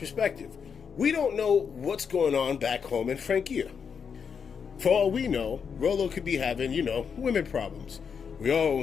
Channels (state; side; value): quieter; right; 6.5 dB